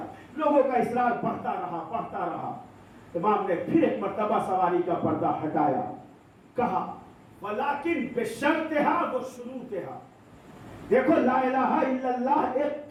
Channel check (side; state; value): both; identical; correlation 1.00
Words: لوگوں کا اصرار بڑھتا رہا۔ امام نے پھر ایک مرتبہ سواری کا پردہ ہٹایا، کہا ولیکن بشرطہا و شروطہا، دیکھو لا الہ الا اللہ ایک